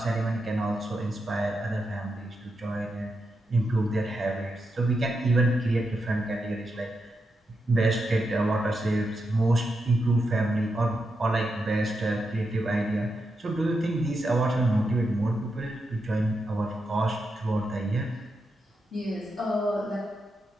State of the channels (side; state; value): both; normal; correlation 0.86